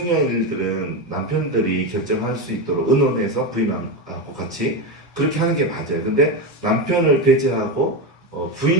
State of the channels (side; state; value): both; normal; correlation 0.14